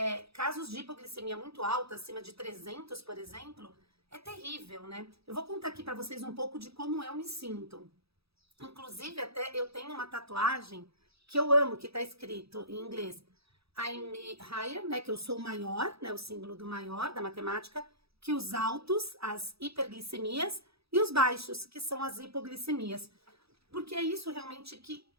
casos de hipoglicemia muito alta, acima de 300, por exemplo, é terrível, né? Eu vou contar aqui para vocês um pouco de como eu me sinto. Inclusive, até eu tenho uma tatuagem que eu amo, que tá escrito em inglês I'm higher, né? Que eu sou maior, né? O símbolo do maior, da matemática, que os altos, as hiperglicemias, e os baixos, que são as hipoglicemias. Porque é isso realmente que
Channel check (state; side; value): late; left; 0.77 ms